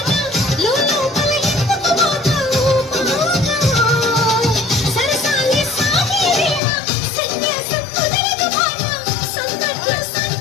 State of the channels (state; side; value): drops out; right; at 6.6 s